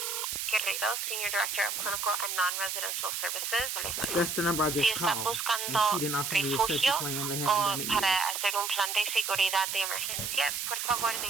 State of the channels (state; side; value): noise; right; hiss, 2 dB below the sound